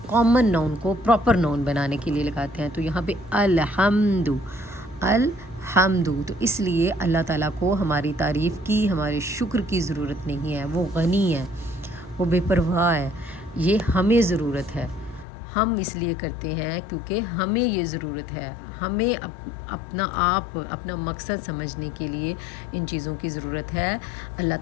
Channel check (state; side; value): drops out; right; at 15.2 s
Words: کامن نون کو پراپر نون بنانے کے لیے لگاتے ہیں، تو یہاں پہ الحمد، تو اس لیے اللہ تعالیٰ کو ہماری تعریف کی، ہمارے شکر کی ضرورت نہیں ہے، وہ غنی ہے، وہ بے پرواہ ہے، یہ ہمیں ضرورت ہے، ہم اس لیے کرتے ہیں کیونکہ ہمیں یہ ضرورت ہے، ہمیں اپنا آپ، اپنا مقصد سمجھنے کے لیے ان چیزوں کی ضرورت ہے۔ اللہ